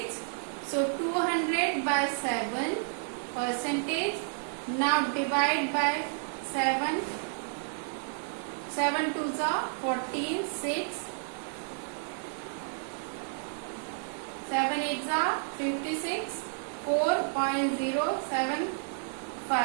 So 200 by 7 percentage. Now divide by 7. 7 twos are 14, 6. 7 eights are 56.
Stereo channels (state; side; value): silent; left; 56 dB below the other